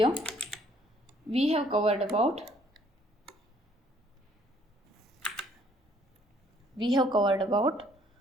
we have covered about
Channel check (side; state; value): both; normal; correlation 0.62